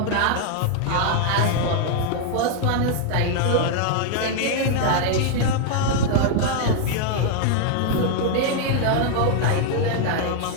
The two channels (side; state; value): both; different; correlation 0.00